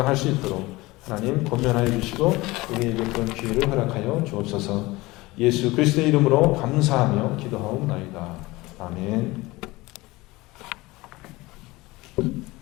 수 있도록 하나님 권면하여 주시고 우리에게 그런 기회를 허락하여 주옵소서. 예수 그리스도의 이름으로 감사하며 기도하옵나이다. 아멘.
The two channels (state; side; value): quieter; right; 20.8 dB